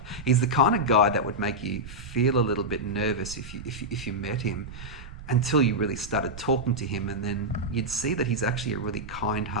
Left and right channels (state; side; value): noise; right; rumble, 15 dB below the sound